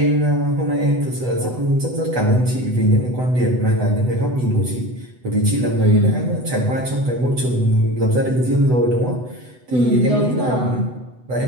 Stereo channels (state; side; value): late; left; 8.0 ms